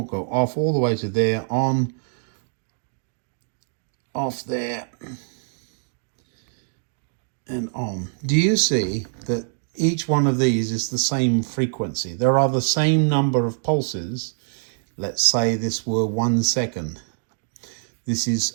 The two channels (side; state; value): left; silent; digital silence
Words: Go off all the way to there, on, off there, and on. Do you see that each one of these is the same frequency? There are the same number of pulses. Let's say this were 1 second. This is